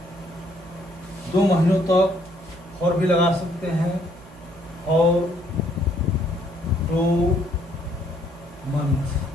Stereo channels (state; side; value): noise; right; hum, 21 dB below the sound